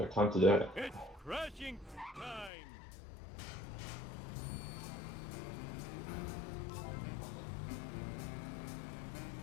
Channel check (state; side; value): drops out; right; at 2.5 s